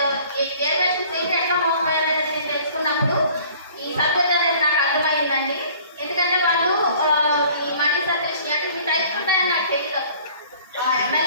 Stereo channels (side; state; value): both; inverted; correlation -0.52